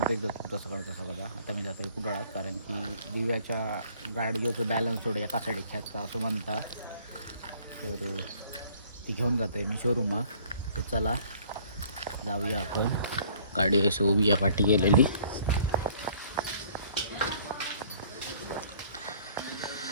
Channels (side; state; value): both; inverted; correlation -0.57